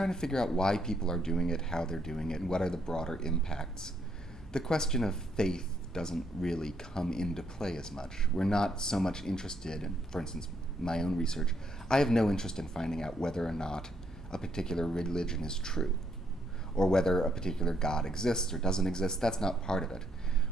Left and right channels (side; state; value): both; normal; correlation 0.73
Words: to figure out why people are doing it, how they're doing it, and what are the broader impacts. The question of faith doesn't really come into play as much. We're not so much interested in, for instance, my own research, I have no interest in finding out whether or not a particular religion is true, or whether a particular God exists or doesn't exist. That's not part of it.